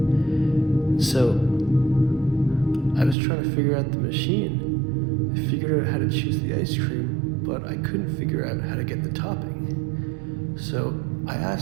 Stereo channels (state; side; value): drops out; left; at 3.2 s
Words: So I was trying to figure out the machine. I figured out how to choose the ice cream, but I couldn't figure out how to get the topping. So I